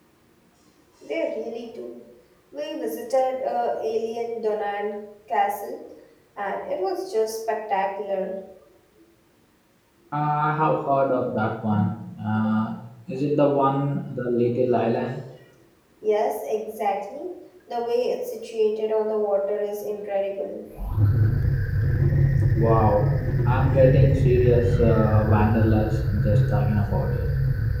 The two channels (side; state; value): both; identical; correlation 1.00